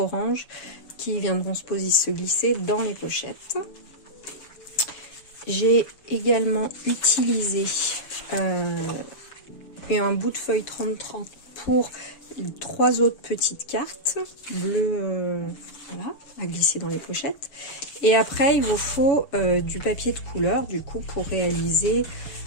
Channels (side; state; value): right; late; 7.1 ms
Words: qui viendront se glisser dans les pochettes. J'ai également utilisé un bout de feuille 30-30 pour 3 autres petites cartes bleues, voilà, à glisser dans les pochettes. Et après, il vous faut du papier de couleur, du coup, pour réaliser,